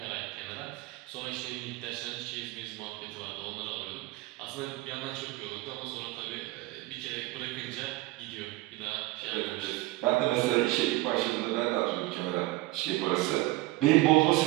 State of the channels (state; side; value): quieter; left; 19.5 dB